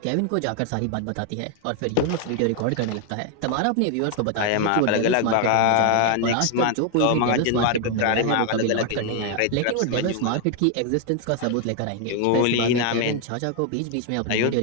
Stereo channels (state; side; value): different; both; correlation 0.00